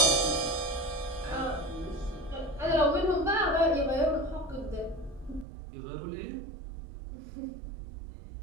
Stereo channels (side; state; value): left; drops out; at 5.5 s